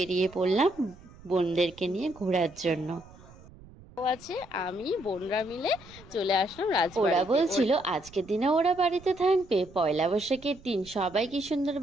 পড়লাম বোনদেরকে নিয়ে ঘোরার জন্য। আছে আমি বোনরা মিলে চলে আসলাম রাজবাড়িতে। ওরা বলছিল আজকের দিনে ওরা বাড়িতে থাকবে, পয়লা বৈশাখের দিন সবাই কি সুন্দর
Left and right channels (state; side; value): noise; right; rumble, 22 dB below the sound